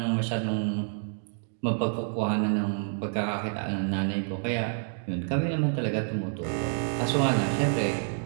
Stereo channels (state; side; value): silent; left; digital silence